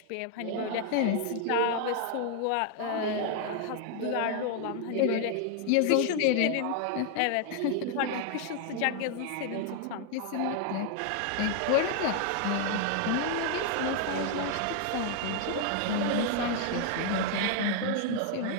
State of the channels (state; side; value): different; both; correlation 0.00